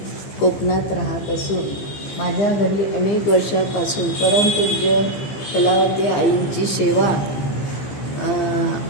कोकणात राहत असून माझ्या घरी अनेक वर्षापासून परमपूज्य कलावती आईंची सेवा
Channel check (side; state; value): right; late; 15 ms